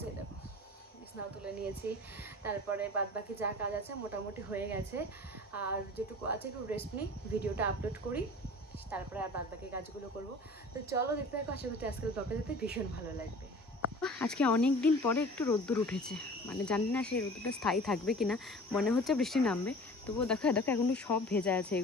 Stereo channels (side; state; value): both; normal; correlation 0.43